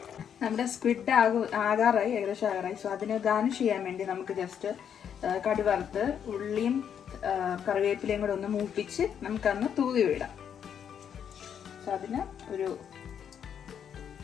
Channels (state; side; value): quieter; right; 8.3 dB